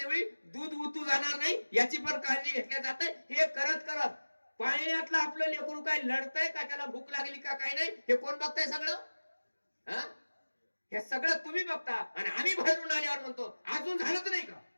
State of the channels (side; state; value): both; inverted; correlation -1.00